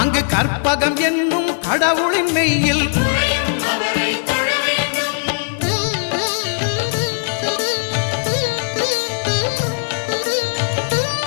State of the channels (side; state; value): right; silent; digital silence